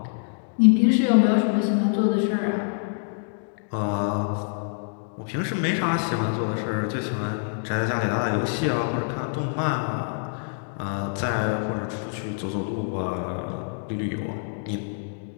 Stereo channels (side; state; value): right; silent; digital silence